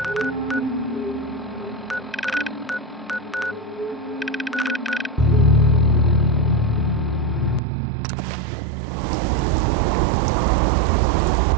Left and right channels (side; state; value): left; drops out; at 7.6 s